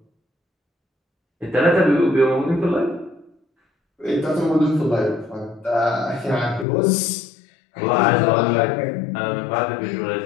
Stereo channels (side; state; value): right; drops out; at 6.7 s